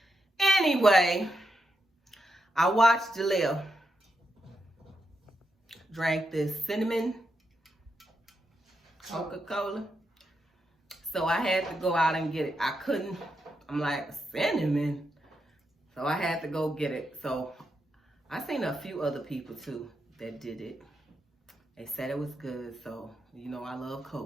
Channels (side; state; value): both; normal; correlation 0.84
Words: Anyway, I watched Jaleel drank this cinnamon Coca-Cola. So I had to go out and get it. I couldn't. I'm like, cinnamon. So I had to go get it. So I seen a few other people too that did it. They said it was good. So, you know, I love